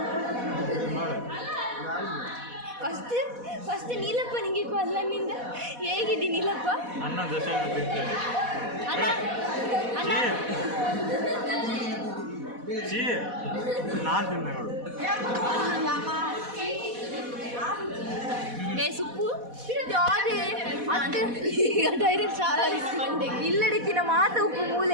ಫಸ್ಟ್ ನೀಲಪ್ಪ ನಿಂಗೆ ಕಾಲ್ ನನ್ನಿಂದ ಹೇಗಿದ್ದೀನಿ ನೀಲಪ್ಪ? ಅಣ್ಣ ಸುಪ್ಪು ಡೈರೆಕ್ಟ್ ಇಲ್ಲಡಿತ್ತಿನ ಮಾತ ಉಪ್ಪು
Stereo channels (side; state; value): left; late; 4.1 ms